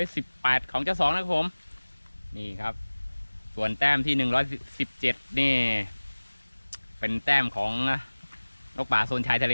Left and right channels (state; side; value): inverted; both; correlation -1.00